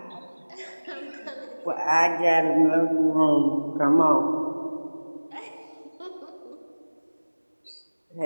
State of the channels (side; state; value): both; inverted; correlation -1.00